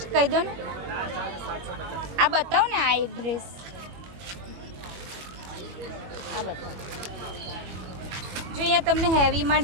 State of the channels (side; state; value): left; late; 21 ms